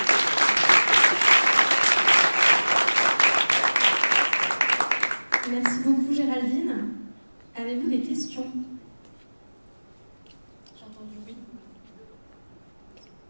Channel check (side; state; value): both; inverted; correlation -1.00